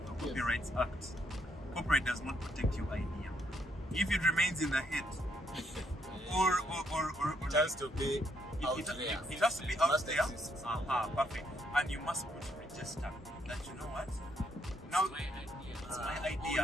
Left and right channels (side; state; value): both; normal; correlation 0.74